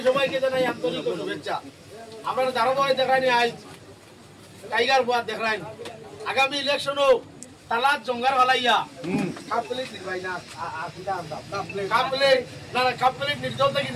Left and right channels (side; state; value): both; identical; correlation 1.00